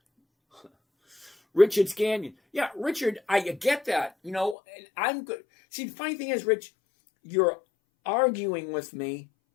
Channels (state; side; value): drops out; right; at 4.5 s